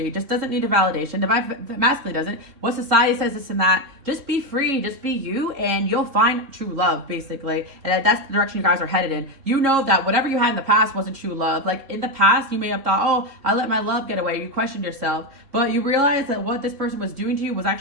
just doesn't need a validation. Divine masculine doesn't. What society says this and that. Just be free. Just be you, and you'll find true love, basically. And that's the direction you guys are headed in. You know that whatever you had in the past wasn't true love. Like, in the past, you may have thought, oh, I let my love get away. You questioned yourself. But you realized that what this person was doing to you was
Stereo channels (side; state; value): left; late; 3.7 ms